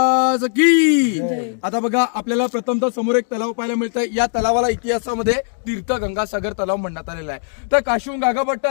की. आता बघा, आपल्याला प्रथमतः समोर एक तलाव पाहायला मिळतंय. या तलावाला इतिहासामध्ये तीर्थ गंगासागर तलाव म्हणण्यात आलेला आहे. तर काशीहून गागाभट्ट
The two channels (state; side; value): silent; right; digital silence